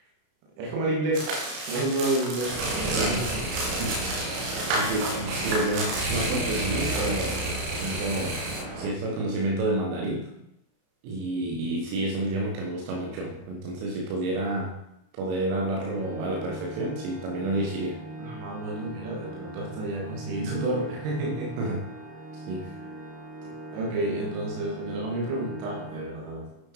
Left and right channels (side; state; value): left; late; 33 ms